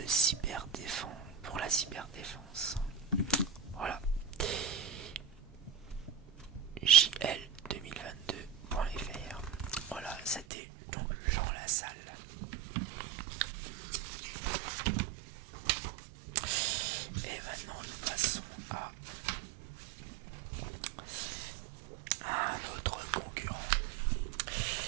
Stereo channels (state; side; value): drops out; left; at 10.5 s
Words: cyberdéfense. Voilà. JL2022.fr. Voilà, c'était donc Jean Lassalle. Et maintenant nous passons à un autre concurrent,